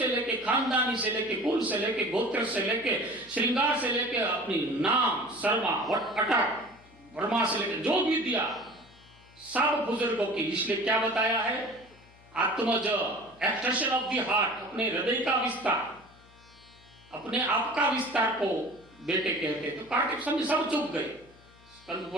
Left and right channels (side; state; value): left; noise; hum, 27 dB below the sound